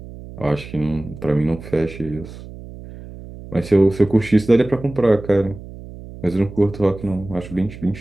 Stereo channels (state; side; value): noise; right; hum, 15 dB below the sound